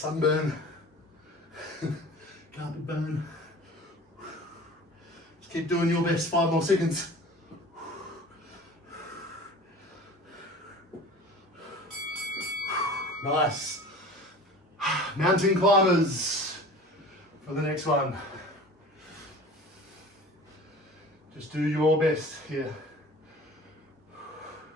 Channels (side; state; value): both; normal; correlation 0.41